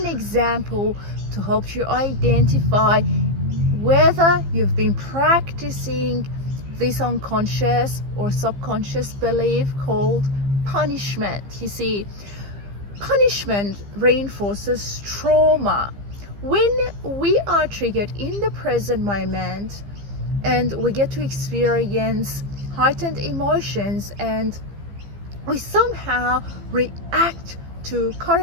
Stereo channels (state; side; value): late; left; 15 ms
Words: an example to help you identify whether you've been practicing this unconscious or subconscious belief called punishment. You see, punishment reinforces trauma. When we are triggered in the present moment and we get to experience heightened emotions and we somehow react to